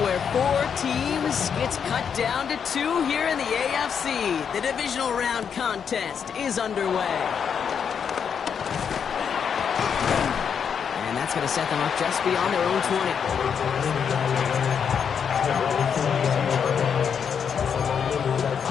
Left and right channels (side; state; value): right; quieter; 7.2 dB